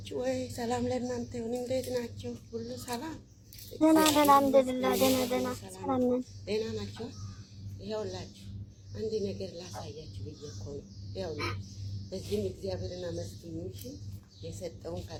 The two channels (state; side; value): identical; both; correlation 1.00